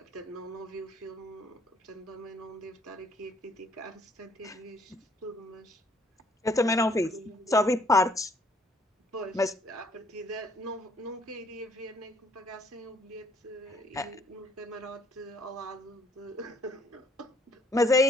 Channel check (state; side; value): normal; both; correlation 0.64